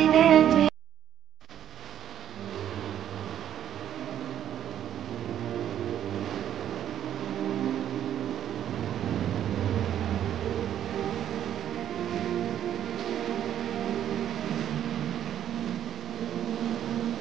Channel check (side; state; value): left; quieter; 10.4 dB